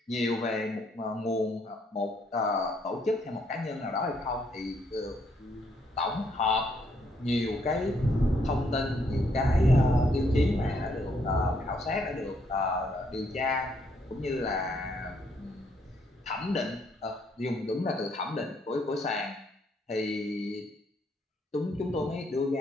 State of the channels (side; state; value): both; normal; correlation 0.71